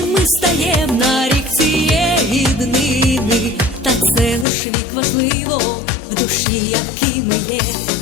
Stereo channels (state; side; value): drops out; right; at 4.5 s